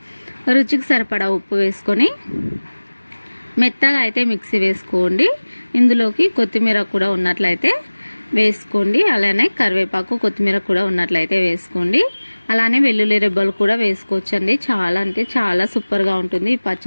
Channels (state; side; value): inverted; both; correlation -1.00